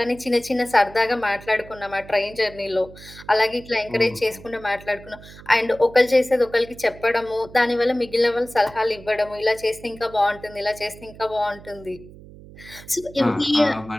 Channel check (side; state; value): right; noise; hum, 19 dB below the sound